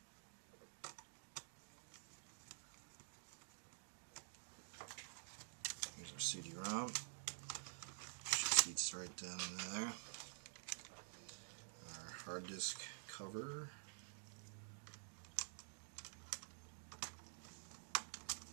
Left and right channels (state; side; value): silent; left; digital silence